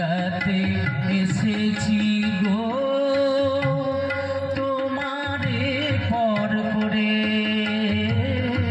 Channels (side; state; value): both; identical; correlation 1.00